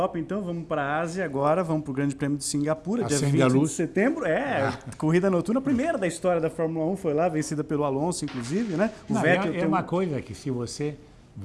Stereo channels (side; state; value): both; identical; correlation 1.00